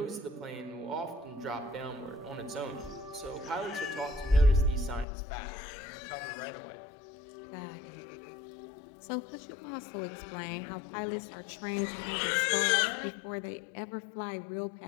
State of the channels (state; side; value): drops out; right; at 5.1 s